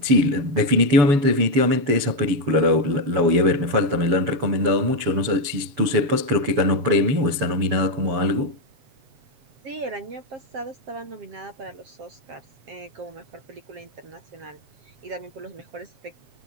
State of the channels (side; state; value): left; late; 7.0 ms